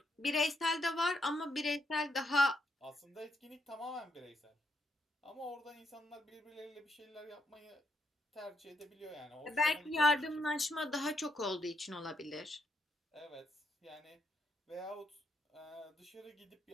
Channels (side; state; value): both; normal; correlation 0.77